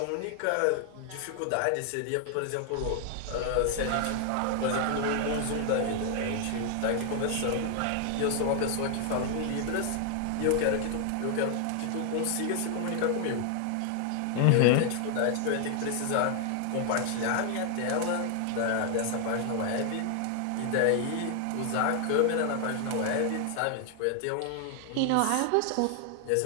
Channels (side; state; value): both; different; correlation 0.00